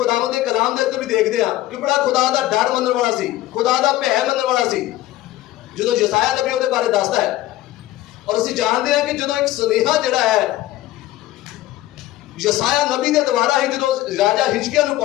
दे कलाम दे उत्ते भी देखते हैं कि बड़ा खुदा दा डर मनण वाला सी, खुदा दा भै मनण वाला सी। जो यसाया नबी उसके बारे दसदा है, और असीं जानते हैं कि जो एक सुनेहा जिहड़ा है यसाया नबी के द्वारा ही जो राजा हिजकिया नूं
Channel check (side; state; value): right; quieter; 15.4 dB